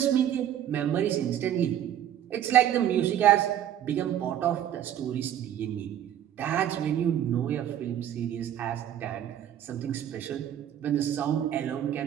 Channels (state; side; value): quieter; left; 10.8 dB